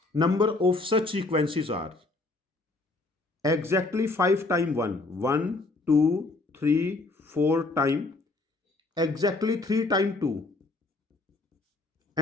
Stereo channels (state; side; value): quieter; right; 3.2 dB